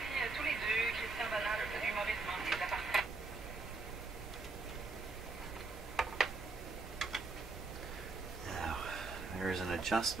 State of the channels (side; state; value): left; quieter; 3.8 dB